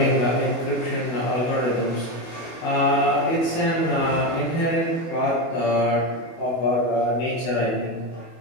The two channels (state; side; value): late; right; 24 ms